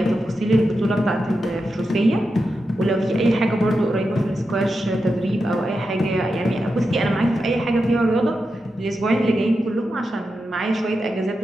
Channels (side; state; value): both; normal; correlation 0.89